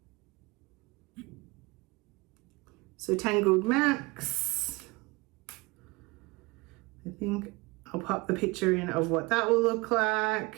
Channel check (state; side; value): quieter; left; 24.4 dB